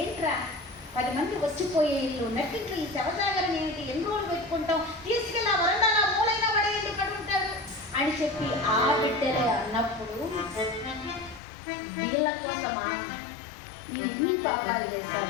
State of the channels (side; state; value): right; drops out; at 11.4 s